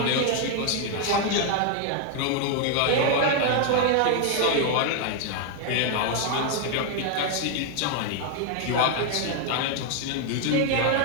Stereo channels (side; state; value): both; different; correlation 0.00